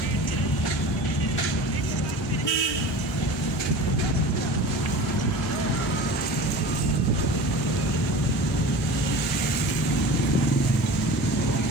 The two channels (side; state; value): both; normal; correlation 0.36